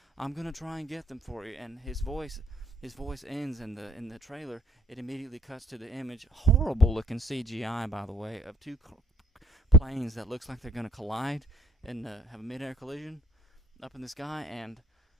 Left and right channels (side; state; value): both; normal; correlation 0.62